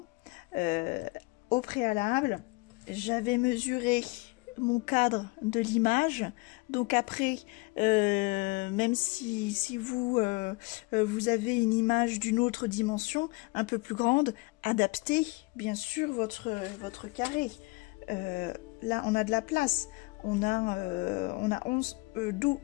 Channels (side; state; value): right; quieter; 25.0 dB